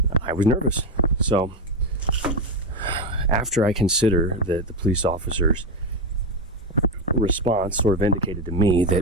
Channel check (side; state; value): both; normal; correlation 0.10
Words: I was nervous. So after I consider that the police officer's response sort of indicated to me that